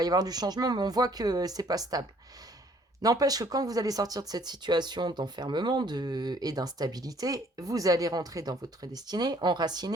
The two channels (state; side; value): normal; both; correlation 0.60